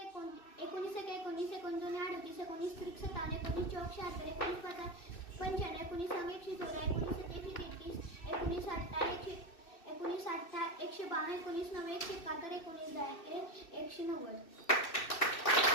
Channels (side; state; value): right; late; 2.6 ms